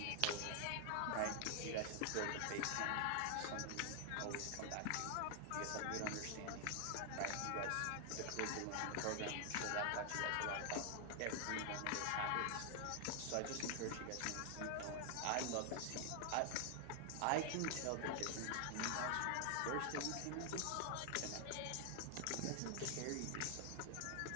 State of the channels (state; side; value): different; both; correlation 0.00